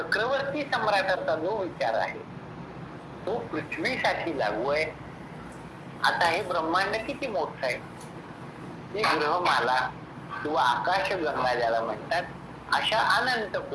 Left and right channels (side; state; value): both; identical; correlation 1.00